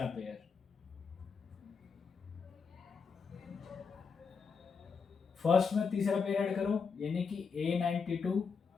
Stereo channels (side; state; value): right; quieter; 5.6 dB